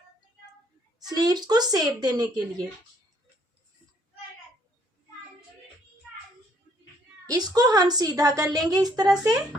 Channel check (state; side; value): normal; both; correlation 0.65